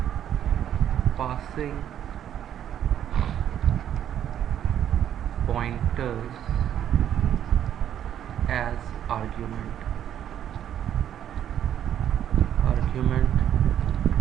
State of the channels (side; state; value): left; quieter; 10.2 dB